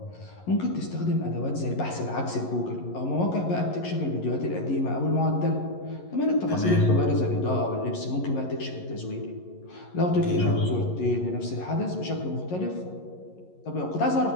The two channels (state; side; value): late; right; 11 ms